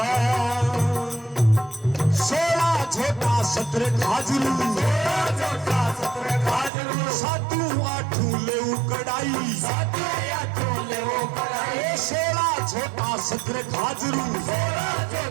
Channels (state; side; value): drops out; left; at 6.7 s